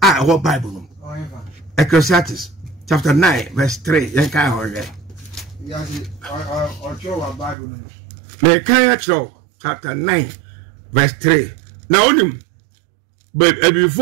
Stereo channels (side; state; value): left; drops out; at 7.6 s